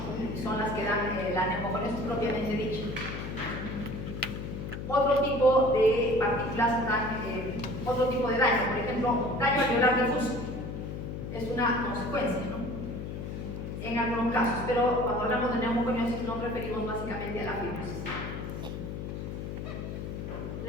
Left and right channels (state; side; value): noise; left; hum, 6 dB below the sound